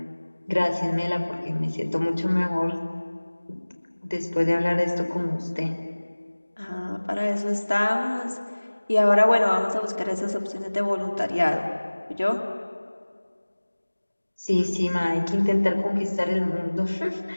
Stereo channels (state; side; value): inverted; both; correlation -1.00